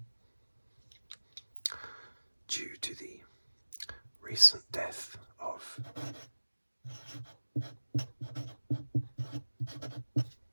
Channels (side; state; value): both; inverted; correlation -1.00